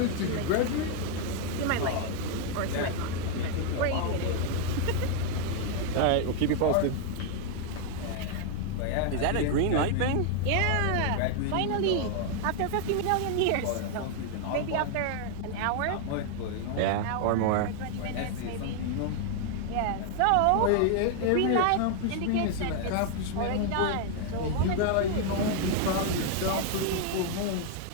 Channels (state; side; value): different; both; correlation 0.00